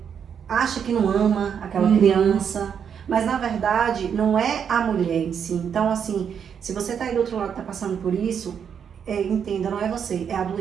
acha que não ama aquela criança, mas na verdade não é a mulher em si. Então, assim, se você tá aí do outro lado, tá passando por isso, entenda, não é você, é a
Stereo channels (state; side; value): quieter; left; 7.6 dB